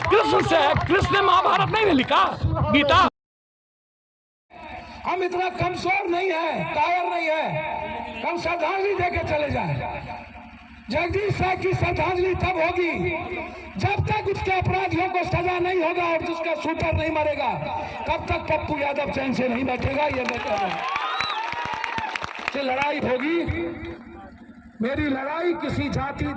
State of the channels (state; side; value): identical; both; correlation 1.00